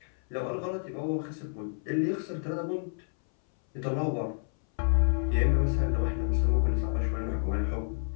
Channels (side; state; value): right; silent; 58 dB below the other